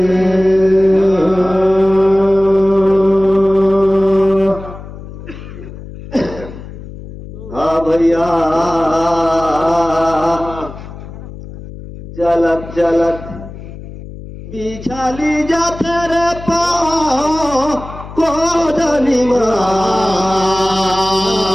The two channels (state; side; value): noise; left; hum, 14 dB below the sound